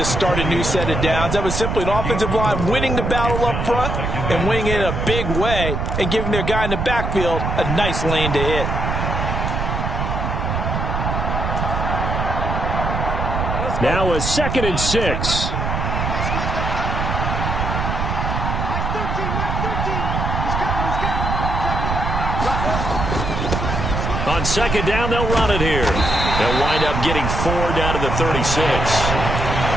start a new set of downs. That was simply an offensive line winning the battle up front and winning it in a big way and giving their guy in the backfield a nice lane to hit. Now a 2nd and 6. On second down, they'll run it here. They'll wind up getting 4 down to the 36.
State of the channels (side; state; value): right; noise; rumble, 2 dB below the sound